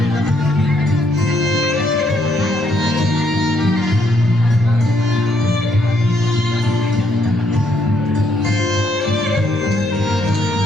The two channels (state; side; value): normal; both; correlation 0.73